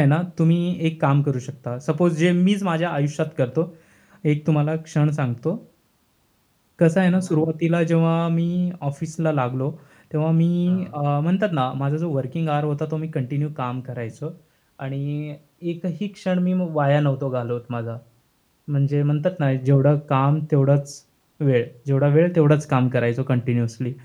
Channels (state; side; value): identical; both; correlation 1.00